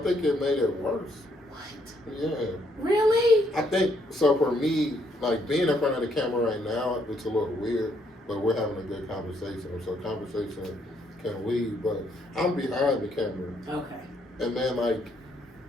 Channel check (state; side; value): normal; both; correlation 0.72